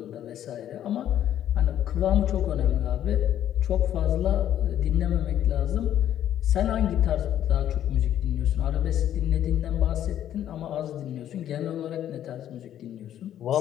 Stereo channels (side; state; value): right; quieter; 11.1 dB